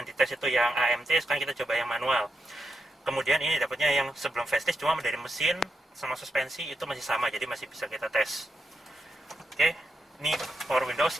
dites itu yang AMT, sekarang kita coba yang manual. Kemudian ini dapatnya yang sebelum facelift, cuma dari mesin sama suspensi itu masih sama, jadi masih bisa kita tes. Oke, ini power windows,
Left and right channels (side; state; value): both; normal; correlation 0.85